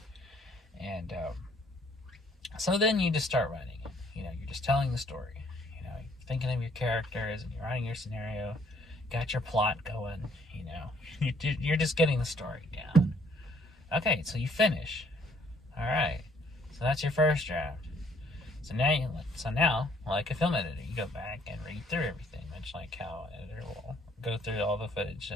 And so then you just start writing it. You're just telling the story. You're thinking of your characters and you're writing your scenario. Got your plot going. You're just getting the story down. Okay, so you finish. All right. So that's your first draft. So now, like a film editor, you go back and read through everything, much like how an editor will go through all the footage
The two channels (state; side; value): normal; both; correlation 0.63